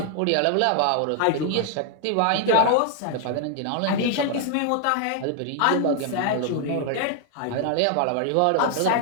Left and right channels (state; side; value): different; both; correlation 0.00